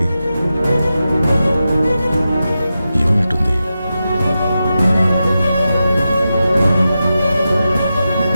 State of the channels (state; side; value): inverted; both; correlation -0.90